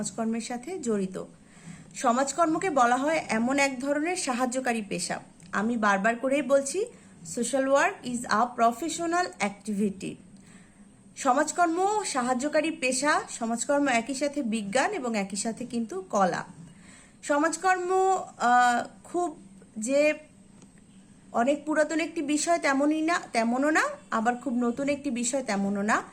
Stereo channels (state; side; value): identical; both; correlation 1.00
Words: সাথে জড়িত। সমাজকর্মকে বলা হয় এমন এক ধরনের সাহায্যকারী পেশা। আমি বারবার করেই বলছি, social work is a professional activity. সমাজকর্ম সাহায্যকারী পেশা, সমাজকর্ম একই সাথে বিজ্ঞান এবং একই সাথে কিন্তু কলা। সমাজকর্ম খুব যে অনেক পুরাতন একটি বিষয় তেমনও না, আবার খুব নতুন একটি বিষয় তেমনও না।